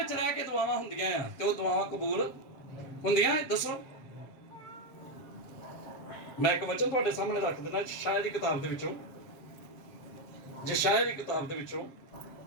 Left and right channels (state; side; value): late; right; 7.4 ms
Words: ਰਹਿ ਕੇ ਦੁਆਵਾਂ ਹੁੰਦੀਆਂ ਆ ਤੇ ਉਹ ਦੁਆਵਾਂ ਕਬੂਲ ਹੁੰਦੀਆਂ? ਦੱਸੋ। ਮੈਂ ਇੱਕ ਵਚਨ ਤੁਹਾਡੇ ਸਾਹਮਣੇ ਰੱਖ ਦਿੰਦਾ, ਯਸ਼ਾਇਆ ਦੀ ਕਿਤਾਬ ਦੇ ਵਿੱਚੋਂ, ਯਸ਼ਾਇਆ